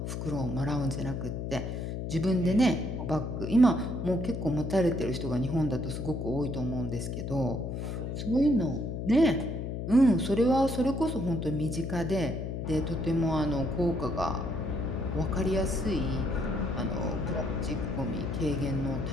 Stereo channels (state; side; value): noise; left; hum, 4 dB below the sound